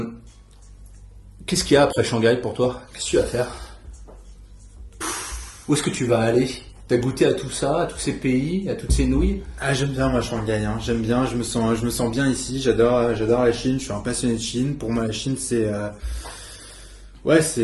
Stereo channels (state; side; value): identical; both; correlation 1.00